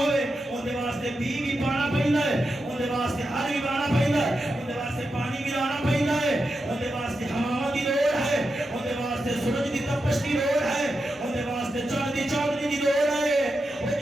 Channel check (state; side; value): normal; both; correlation 0.88